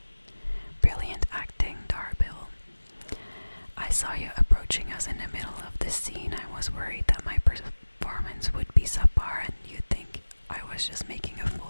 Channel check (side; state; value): both; inverted; correlation -1.00